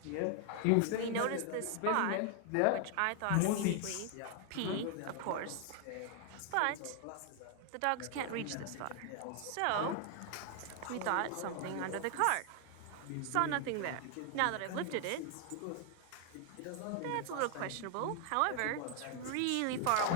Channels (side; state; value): both; different; correlation 0.00